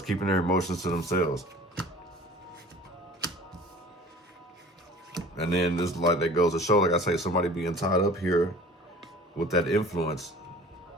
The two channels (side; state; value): both; normal; correlation 0.45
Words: keeping their emotions to themselves. And then this, like, that goes to show, like I say, somebody being tied up here with that influence.